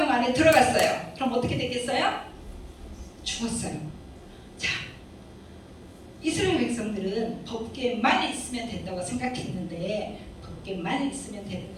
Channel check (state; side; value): identical; both; correlation 1.00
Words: 안에 들어갔어요. 그럼 어떻게 되겠어요? 죽었어요. 자, 이스라엘 백성들은 법궤만 있으면 된다고 생각했는데 법궤만 있으면 되는